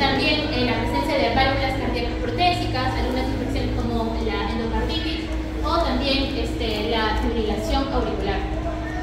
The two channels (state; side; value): identical; both; correlation 1.00